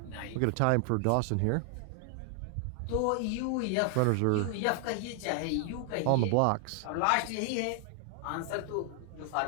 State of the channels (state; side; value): different; both; correlation 0.00